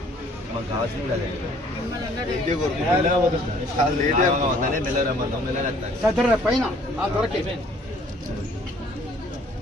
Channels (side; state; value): both; normal; correlation 0.58